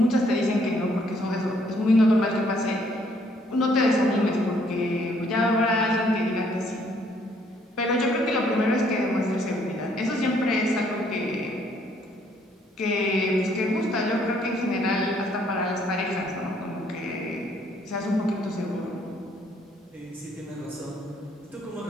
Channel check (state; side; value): normal; both; correlation 0.66